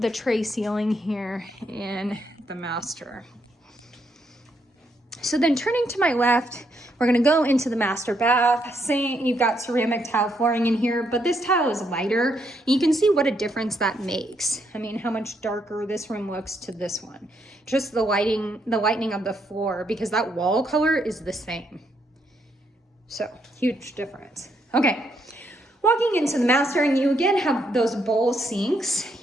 the tray ceiling here in the master. So then turning to my left, we're gonna go into the master bath. Saying you've got ceramic tile flooring in here, but this tile is lighter. You can see what a difference that makes. I mean, how much darker this room looks to this one. Just the lightening of the floor, because that wall color is the same. So, huge difference. Okay, walking into the master, and you again have those bowl sinks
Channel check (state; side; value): normal; both; correlation 0.76